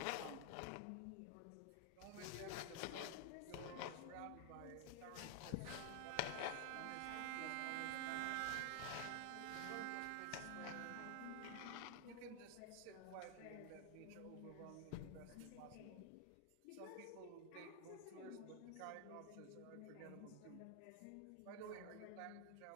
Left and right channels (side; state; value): both; different; correlation 0.00